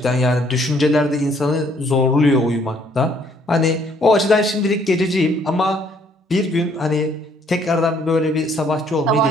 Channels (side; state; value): both; normal; correlation 0.65